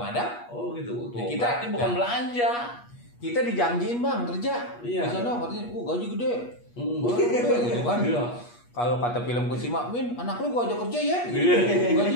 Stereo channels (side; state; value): right; late; 8.4 ms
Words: Oh gitu. Tuh, Ya, berarti bukan belanja. kita dijanjiin bang kerja. Iya. Di sana katanya, gaji gede. Hmm. Gaji gede gitu kan. Iya. Kalau kata film Kusima, Min, anak lu gua ajak kerja ya. Iya.